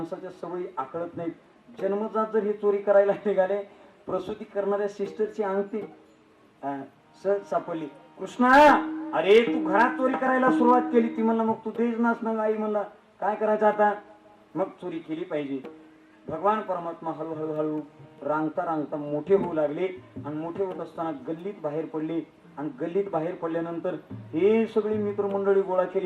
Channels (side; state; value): both; identical; correlation 1.00